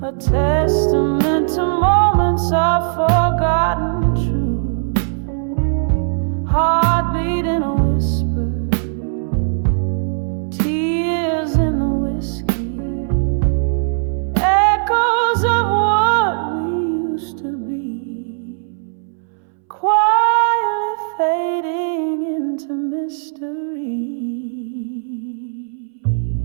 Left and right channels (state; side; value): silent; left; 66 dB below the other